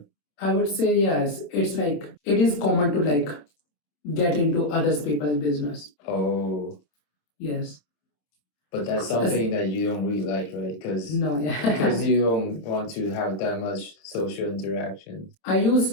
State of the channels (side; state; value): right; late; 26 ms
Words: I would say yes. It's like it is common to like get into other people's business. Oh, Yes. but that's something that you don't really like, right? Because No, yeah. you don't want to have that much social interaction. I